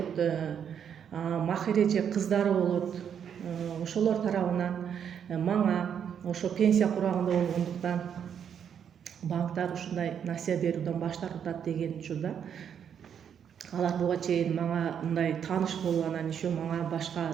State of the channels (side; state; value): left; quieter; 8.2 dB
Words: Махир эже кыздары болот. Ошолор тарабынан мага ошо пенсия курагында болгондуктан банктар ушундай насыя берүүдөн баш тартат деген учурда алар буга чейин мага мындай тааныш болуп, анан еще мага